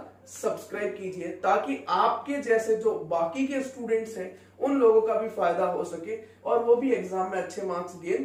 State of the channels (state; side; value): identical; both; correlation 1.00